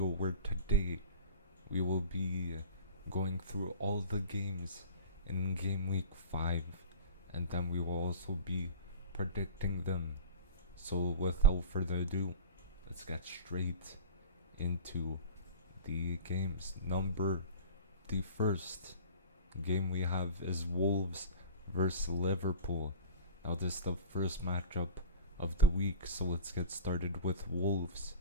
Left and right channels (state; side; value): inverted; both; correlation -0.35